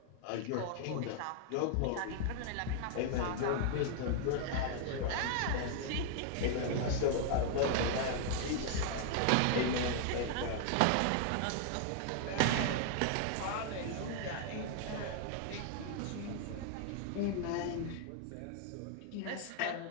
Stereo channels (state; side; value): different; both; correlation 0.00